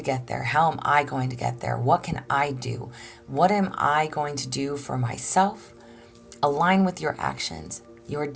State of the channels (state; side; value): identical; both; correlation 1.00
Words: get there? How am I going to get there? What can I do? What am I going to do for myself? Align with your actions, your